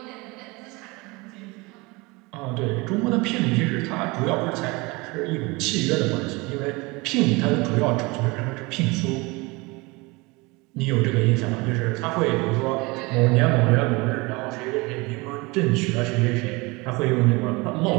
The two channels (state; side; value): quieter; left; 25.0 dB